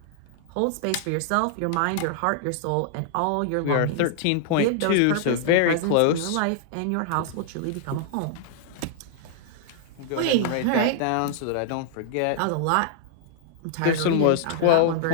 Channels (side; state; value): both; different; correlation -0.01